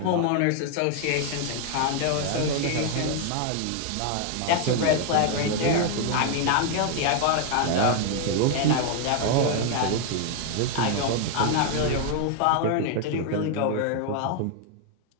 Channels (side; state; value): both; different; correlation 0.00